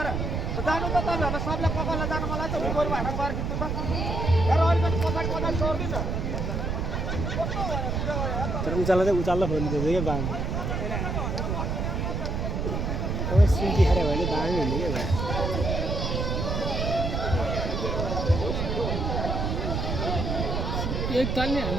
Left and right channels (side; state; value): right; noise; rumble, 1 dB below the sound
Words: जानु त तपाईँहरूलाई सबलाई ककललाई जानु मन लाग्छ गोरु हाट गएर खिच्नु त तर अलिकति पछाडि पछाडि छोडिदिन्छ तर उचाल्ला खोल्नु क्या बाङ अब सिन्की खाएर भने बाङ हुने क्या भाइ एक तालले